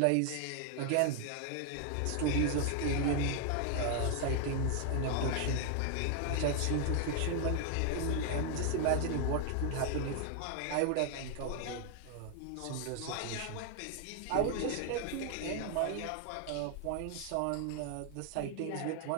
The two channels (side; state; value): both; different; correlation 0.00